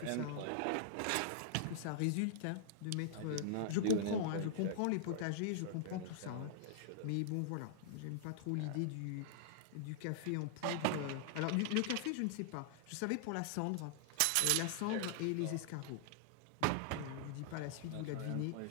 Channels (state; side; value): different; both; correlation -0.01